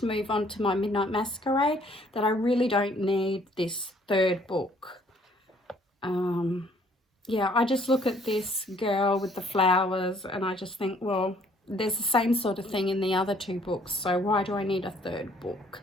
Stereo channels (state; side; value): normal; both; correlation 0.61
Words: move on to my Midnight Masquerade, that I really don't need this third book. Yeah, I just look at this girl with the flowers and I just think, well, there's the same sort of thing in the other two books, so why do I need a third book?